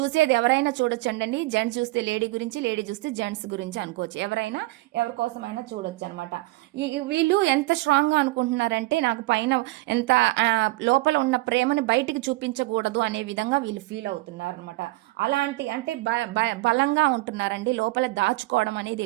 ఎవరైనా చూడొచ్చండి. జెంట్స్ చూస్తే లేడీ గురించి, లేడీ చూస్తే జెంట్స్ గురించి అనుకోవచ్చు. ఎవరైనా ఎవరి కోసమైనా చూడొచ్చు అనమాట. వీళ్ళు ఎంత స్ట్రాంగ్గా అనుకుంటున్నారంటే, నాకు పైన ఎంత లోపల ఉన్న ప్రేమని బయటికి చూపించకూడదు అనే విధంగా వీళ్ళు ఫీల్ అవుతున్నారు అనమాట. అలాంటి అంటే బలంగా ఉంటున్నారండి. లోపల దాచుకోవడం అనేది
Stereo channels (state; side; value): quieter; left; 20.5 dB